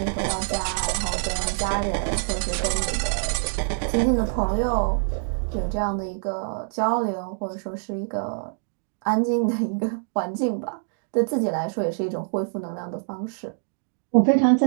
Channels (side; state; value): left; silent; digital silence